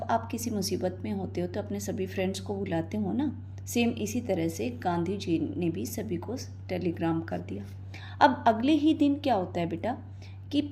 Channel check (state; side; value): identical; both; correlation 1.00